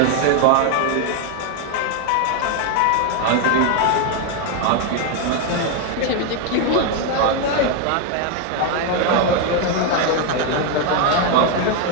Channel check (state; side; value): different; both; correlation 0.01